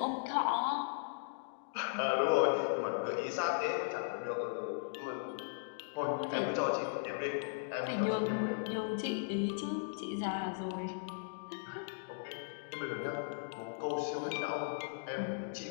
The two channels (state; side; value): silent; right; digital silence